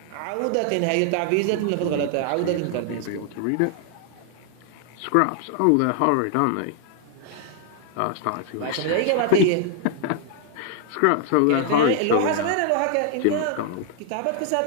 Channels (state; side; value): different; both; correlation 0.00